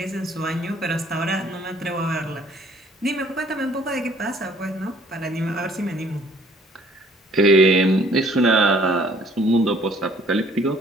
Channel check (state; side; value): normal; both; correlation 0.59